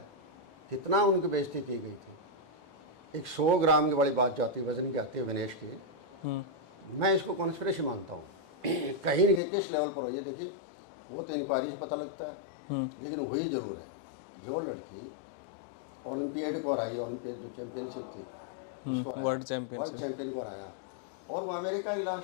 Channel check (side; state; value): right; drops out; at 9.4 s